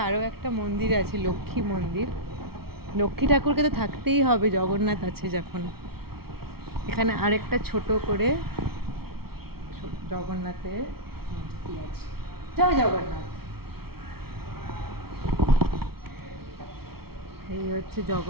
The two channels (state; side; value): late; left; 0.95 ms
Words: আরও একটা মন্দির আছে, লক্ষ্মী মন্দির। লক্ষ্মী ঠাকুরকে তো থাকতেই হবে, জগন্নাথ আছে যখন। এখানে আরেকটা ছোট করে জগন্নাথের মূর্তি আছে। জয় জগন্নাথ। এই হচ্ছে